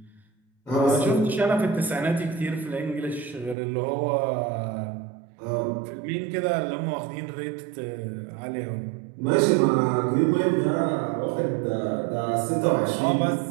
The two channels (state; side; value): drops out; left; at 3.6 s